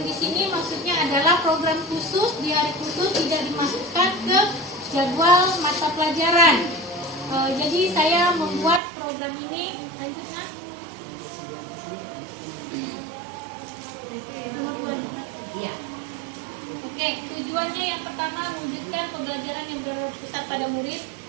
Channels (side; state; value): left; drops out; at 8.8 s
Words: di sini maksudnya adalah program khusus di hari khusus, tidak dimasukkan ke jadwal mata pelajaran. Jadi saya membuat program ini lanjutnya. Oke, tujuannya yang pertama mewujudkan pembelajaran yang berpusat pada murid.